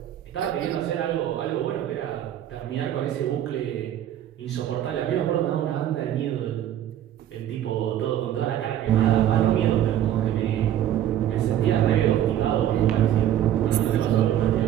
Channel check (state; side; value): quieter; left; 11.3 dB